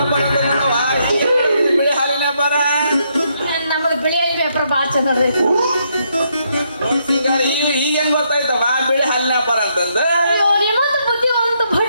ಬಿಳಿ ಹಾಲಿನ ವ್ಯಾಪಾರ ನಮ್ಮದು ಬಿಳಿ ವ್ಯಾಪಾರ ಭಾಳ ಚಂದ ಈಗ ಹೆಂಗ್ ಗೊತ್ತಾಯ್ತವ ಬಿಳಿ ಹಾಲಿನ ವ್ಯಾಪಾರ ಅಂತಂದ ನಿಮ್ಮದು ಬುದ್ಧಿವಂತ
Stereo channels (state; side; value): inverted; both; correlation -0.76